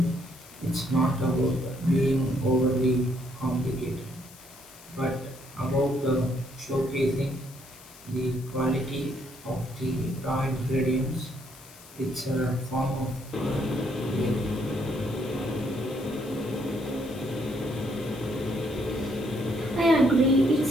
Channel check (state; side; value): noise; left; hiss, 20 dB below the sound